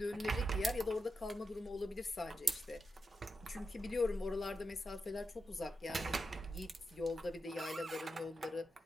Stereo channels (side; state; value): both; normal; correlation 0.87